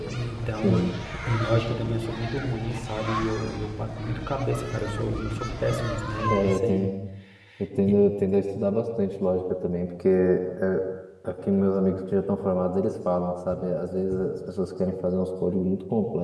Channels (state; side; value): identical; both; correlation 1.00